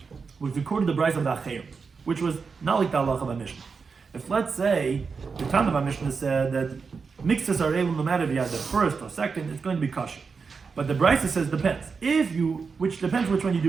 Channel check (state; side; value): quieter; left; 5.2 dB